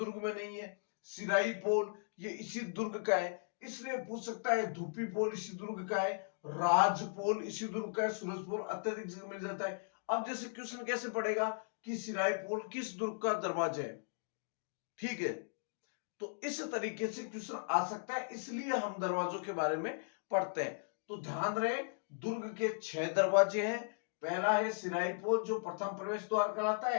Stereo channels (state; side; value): silent; right; digital silence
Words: में नहीं है। सिराई पोल ये इसी दुर्ग का है, इसलिए पूछ सकता है। धूपी पोल इसी दुर्ग का है, राज पोल इसी दुर्ग का है, सूरज पोल अत्यधिक जगह मिल जाता है। अब जैसे क्वेश्चन कैसे पड़ेगा कि सिराई पोल किस दुर्ग का दरवाजा है, ठीक है, तो इस तरीके से क्वेश्चन आ सकता है, इसलिए हम दरवाजों के बारे में पढ़ते हैं। तो ध्यान रहे, दुर्ग के 6 दरवाजे हैं। पहला है सिराई पोल जो प्रथम प्रवेश द्वार कहलाता